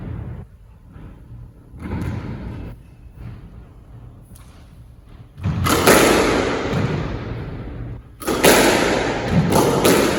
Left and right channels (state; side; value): identical; both; correlation 1.00